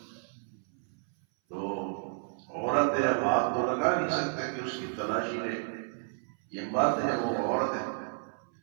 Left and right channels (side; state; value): left; silent; 57 dB below the other